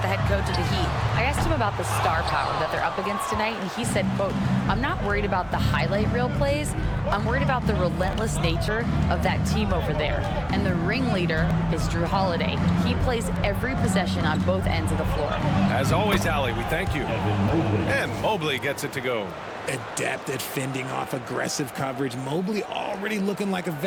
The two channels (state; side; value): identical; both; correlation 1.00